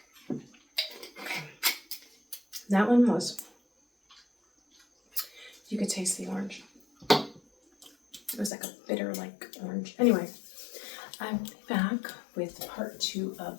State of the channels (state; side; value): drops out; right; at 8.5 s